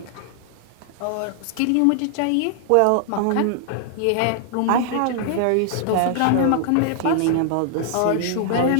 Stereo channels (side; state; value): both; different; correlation 0.00